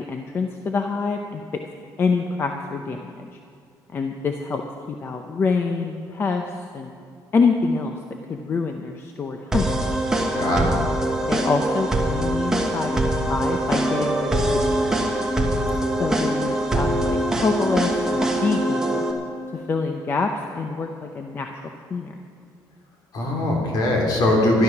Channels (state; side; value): normal; both; correlation 0.76